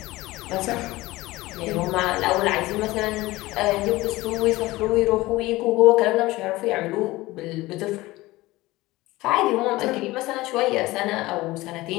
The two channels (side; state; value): right; quieter; 19.2 dB